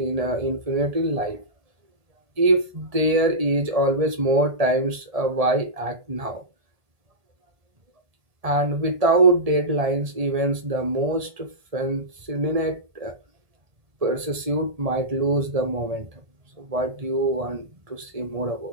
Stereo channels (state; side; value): late; left; 1.7 ms